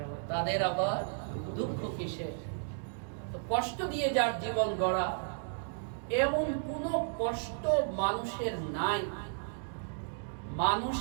তাদের আবার দুঃখ কিসে। তো কষ্ট দিয়ে যার জীবন গড়া, এমন কোনো কষ্ট মানুষের নাই,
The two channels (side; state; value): left; silent; digital silence